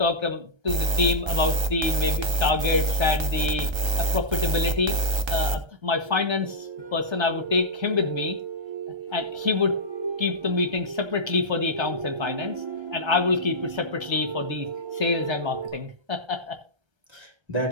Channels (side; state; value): left; late; 1.3 ms